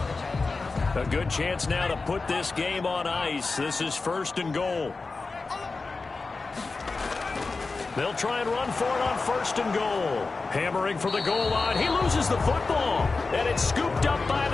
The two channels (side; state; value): right; quieter; 3.9 dB